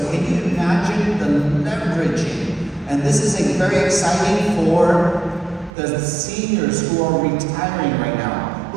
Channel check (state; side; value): drops out; left; at 5.7 s